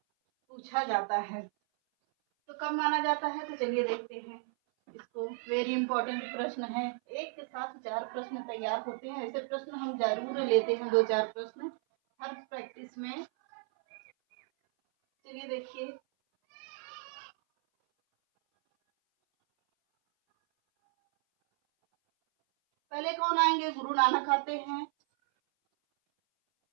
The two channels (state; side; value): silent; left; 55 dB below the other